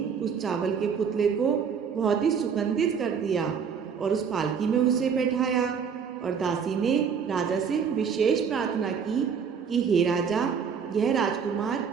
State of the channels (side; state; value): left; quieter; 6.6 dB